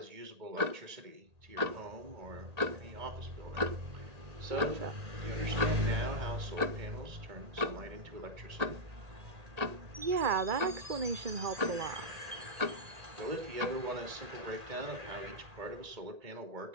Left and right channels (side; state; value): left; late; 1.8 ms